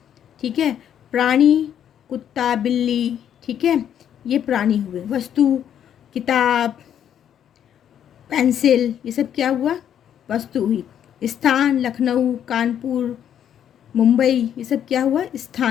ठीक है, प्राणी, कुत्ता, बिल्ली, ठीक है, ये प्राणी हुए। वस्तु, किताब, पेंसिल, ये सब क्या हुआ? वस्तु हुई। स्थान, लखनऊ, कानपुर, मुंबई, ये सब क्या हुआ?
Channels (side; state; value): right; quieter; 9.6 dB